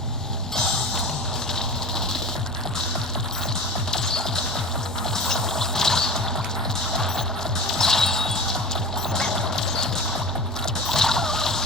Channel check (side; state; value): both; normal; correlation 0.32